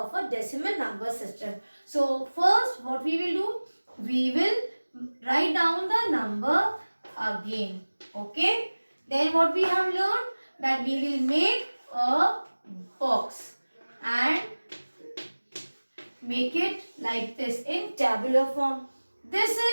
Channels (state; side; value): inverted; both; correlation -1.00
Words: a decimal number system. So first what we will do, we will write down the number again. Okay. Then what we have learned, that we will make a box and make it like this in tabular form. This